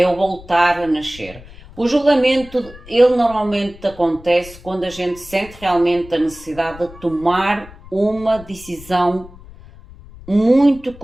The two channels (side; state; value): left; noise; rumble, 19 dB below the sound